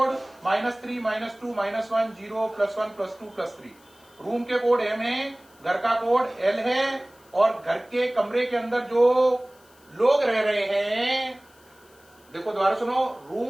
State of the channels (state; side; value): noise; left; hiss, 29 dB below the sound